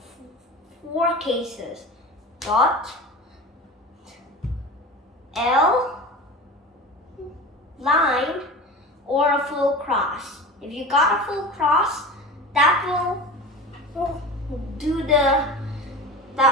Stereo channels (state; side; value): normal; both; correlation 0.32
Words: 4 cases: dot, L, line, or a full cross. If you got a full cross, that will do